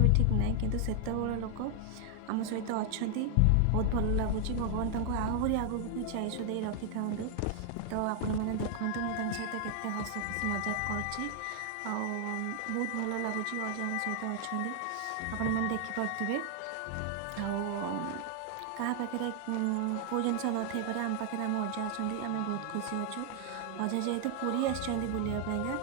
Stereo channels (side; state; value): both; different; correlation 0.00